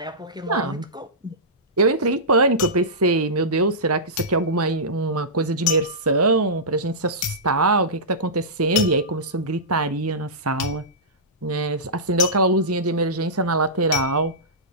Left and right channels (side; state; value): both; normal; correlation -0.17